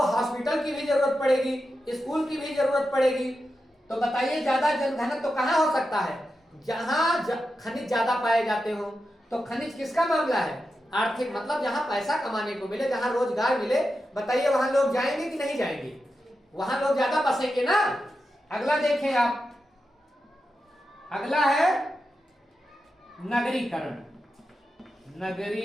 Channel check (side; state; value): both; normal; correlation 0.89